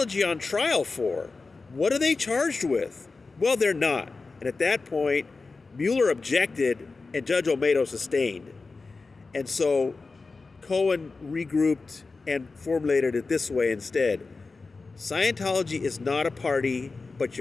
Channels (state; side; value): quieter; right; 4.0 dB